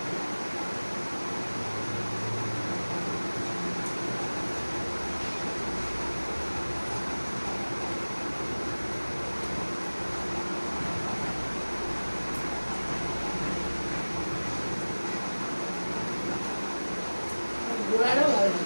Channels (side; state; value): both; inverted; correlation -1.00